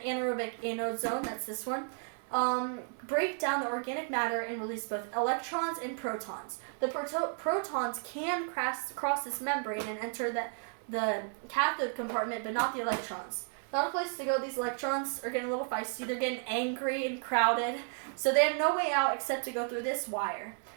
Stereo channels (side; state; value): left; silent; 56 dB below the other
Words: anode zone, that's this one, break down the organic matter and release both electrons and protons. The protons can cross this membrane and enter the cathode compartment, but not the electrons. Not a place to go. These electrons are getting a little feisty. They're getting angry and crowded, so they have no way out except to go through this wire.